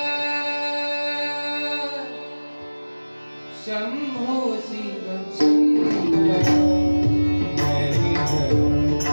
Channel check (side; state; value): both; inverted; correlation -1.00